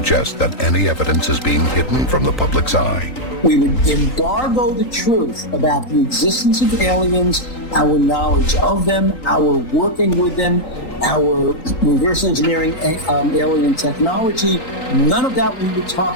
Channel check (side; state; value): right; late; 3.8 ms